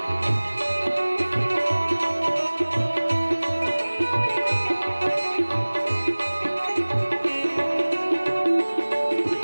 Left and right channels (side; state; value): both; inverted; correlation -1.00